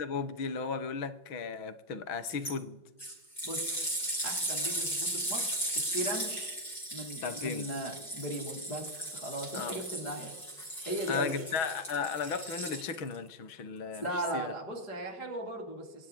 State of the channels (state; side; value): late; right; 5.4 ms